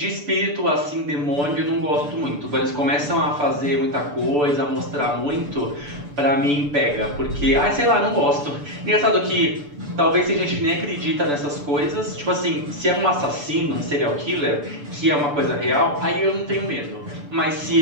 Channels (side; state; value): left; late; 6.9 ms